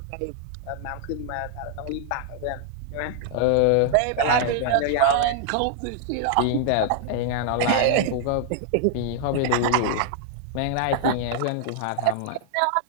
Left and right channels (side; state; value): both; different; correlation -0.01